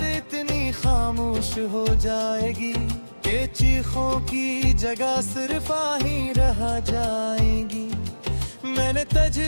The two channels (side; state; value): both; inverted; correlation -1.00